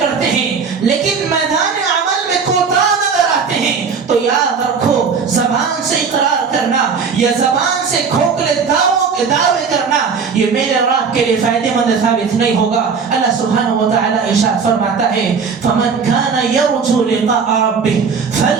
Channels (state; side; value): quieter; left; 5.7 dB